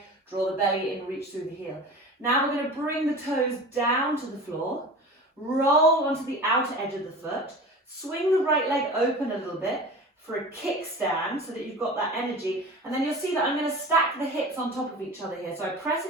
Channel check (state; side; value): normal; both; correlation 0.36